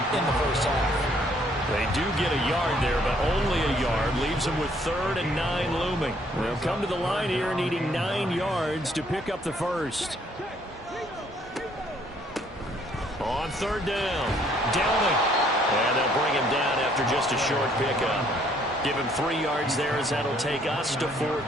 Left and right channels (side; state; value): both; normal; correlation 0.64